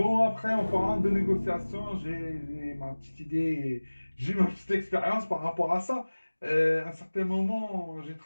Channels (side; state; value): both; inverted; correlation -1.00